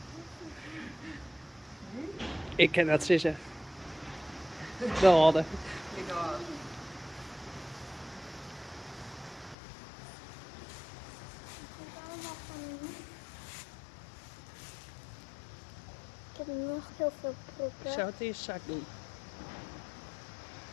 Ik ken dat zeggen. De oude. Ik oude. Ik heb nog heel veel Ik proppen. zou het eerst zak doen.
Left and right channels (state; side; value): drops out; right; at 9.6 s